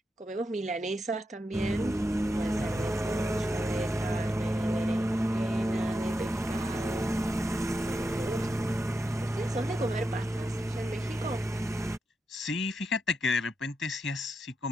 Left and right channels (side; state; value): both; normal; correlation 0.86